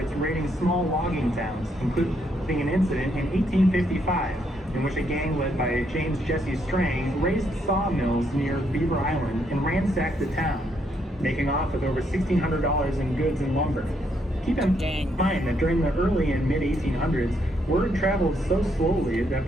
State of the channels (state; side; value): normal; both; correlation 0.74